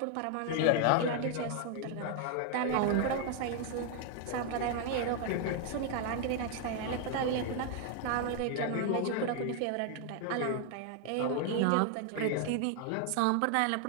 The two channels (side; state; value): both; different; correlation 0.00